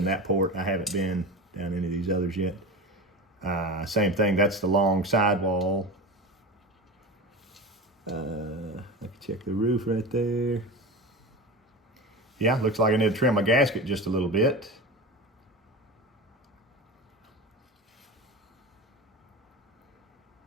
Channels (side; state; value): both; normal; correlation 0.28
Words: that port. I haven't been down any of these others yet. Same thing, that's the long sidewall. I can check the roof right there. Yeah, looks like I need to trim my gasket just a little bit.